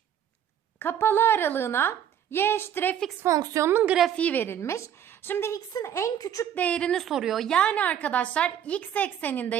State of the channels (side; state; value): left; quieter; 9.7 dB